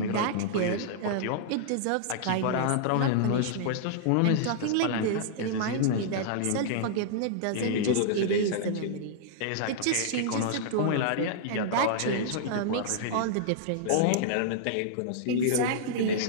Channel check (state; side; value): different; both; correlation -0.02